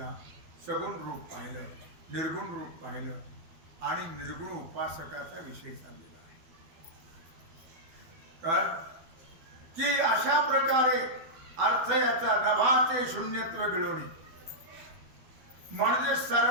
सगुण रूप पाहिलं, निर्गुण रूप पाहिलं, आणि निर्गुण उपासकाचा विषय चाललेला आहे. का की अशा प्रकारे अर्थ याचा नभाचे शून्यत्व गिळवणी, म्हणजे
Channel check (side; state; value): left; late; 12 ms